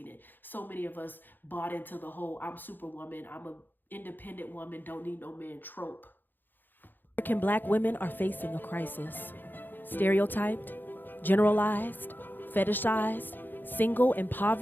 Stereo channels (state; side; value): late; right; 0.091 ms